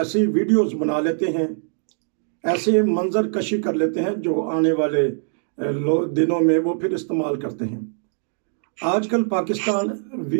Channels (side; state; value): left; silent; digital silence